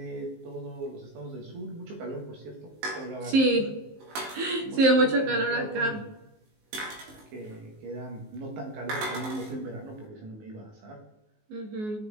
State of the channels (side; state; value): left; late; 19 ms